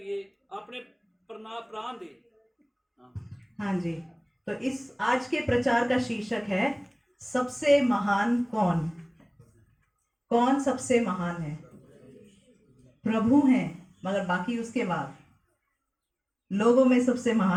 अपने प्राण दे। हाँ जी, तो इस आज के प्रचार का शीर्षक है, सबसे महान कौन? कौन सबसे महान है? प्रभु हैं, मगर बाकी उसके बाद लोगों में सबसे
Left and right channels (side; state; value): both; identical; correlation 1.00